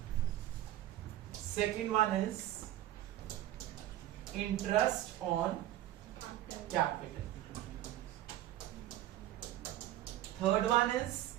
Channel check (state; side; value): quieter; left; 13.5 dB